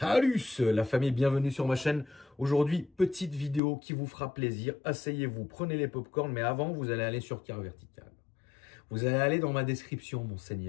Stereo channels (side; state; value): right; drops out; at 3.6 s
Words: la famille, bienvenue sur ma chaîne. Aujourd'hui, petite vidéo qui vous fera plaisir. Asseyez-vous, prenez les popcorns, mais avant, vous allez aller sur Car Vertical. Vous allez aller dans ma description, mon